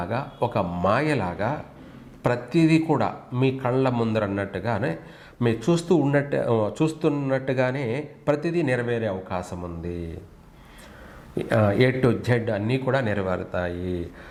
ఒక మాయలాగా ప్రతిదీ కూడా మీ కళ్ళ ముందరన్నట్టుగానే మీరు చూస్తున్నట్టుగానే ప్రతిదీ నెరవేరే అవకాశం ఉంది. ఏ టు జెడ్ అన్నీ కూడా నెరవేరుతాయి.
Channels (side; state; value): both; identical; correlation 1.00